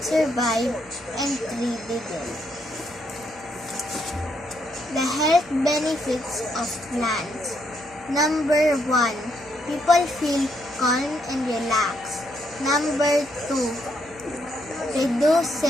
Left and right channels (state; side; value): noise; right; hum, 26 dB below the sound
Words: survived and 3 didn't. The health benefits of plants. Number 1, people feel calm and relaxed. Number 2,